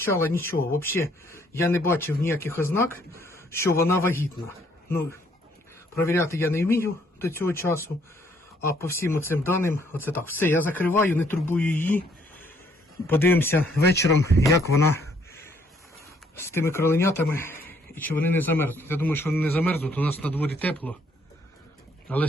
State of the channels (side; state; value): both; normal; correlation 0.66